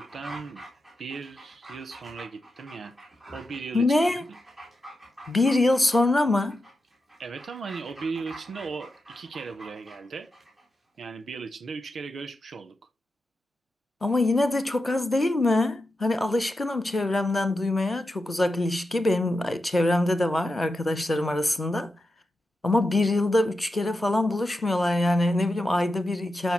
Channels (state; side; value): normal; both; correlation 0.89